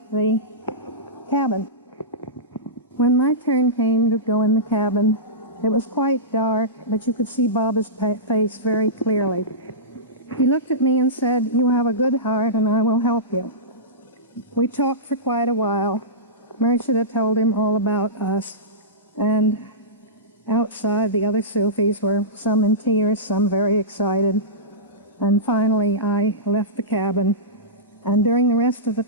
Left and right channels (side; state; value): both; normal; correlation -0.19